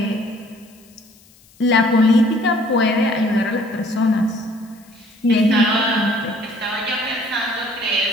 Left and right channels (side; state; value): left; noise; hiss, 28 dB below the sound